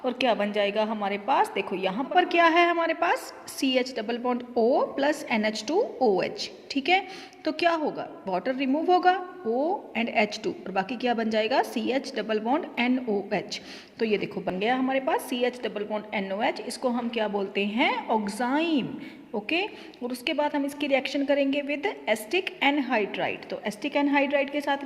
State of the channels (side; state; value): both; identical; correlation 1.00